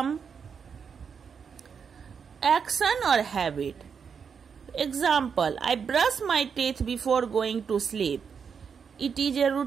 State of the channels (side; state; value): left; quieter; 6.5 dB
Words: action or habit. Example, I brush my teeth before going to sleep. It is a